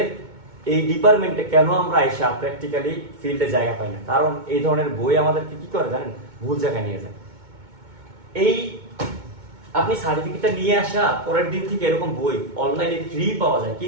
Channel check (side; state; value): left; late; 2.2 ms